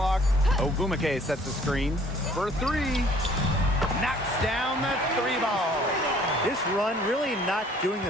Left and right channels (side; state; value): both; normal; correlation 0.56